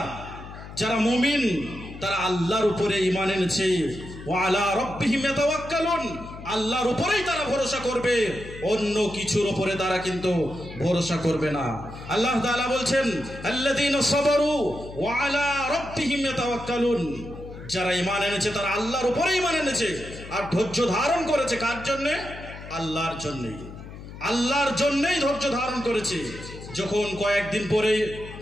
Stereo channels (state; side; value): noise; left; hum, 14 dB below the sound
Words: যারা মুমিন, তারা আল্লাহর উপরে ঈমান এনেছে। ওয়া আলা রাব্বিহিম ইয়াতাওয়াক্কালুন, আল্লাহর উপরেই তারা ভরসা করবে, অন্য কিছুর উপরে তারা কিন্তু ভরসা করবে না। আল্লাহ তাআলা বলছেন আল্লাযীনা সাবারু ওয়া আলা রাব্বিহিম ইয়াতাওয়াক্কালুন, যারা ঈমান এনেছে তারা আল্লাহর উপরে ঈমান এনেছে আর ধৈর্য ধারণ করেছে। কার জন্যে? আল্লাহর জন্যই। আল্লাহর জন্যই ধৈর্য ধারণ করেছে। যখন কয়েকদিন পরে